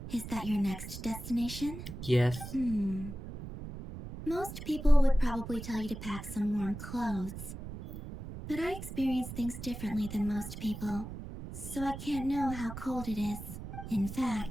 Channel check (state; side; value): noise; right; rumble, 10 dB below the sound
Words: is that your next destination? Yes. Most people would probably tell you to pack some warm clothes. But I experience things differently than most people, so I can't know how cold it is. In